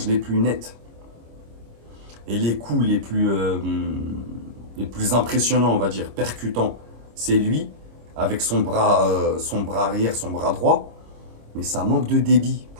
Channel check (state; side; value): late; left; 26 ms